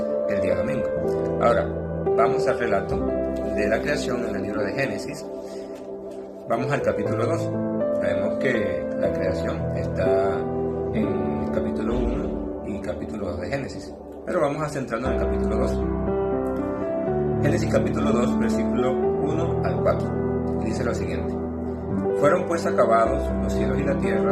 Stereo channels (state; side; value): identical; both; correlation 1.00